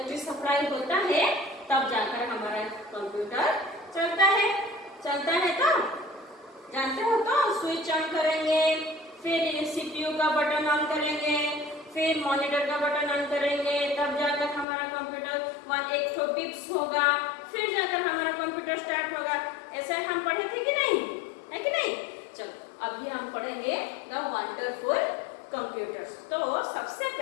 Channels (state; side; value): drops out; right; at 14.7 s